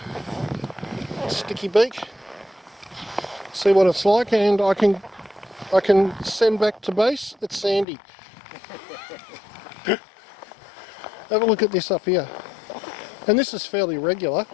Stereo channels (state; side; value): drops out; right; at 7.9 s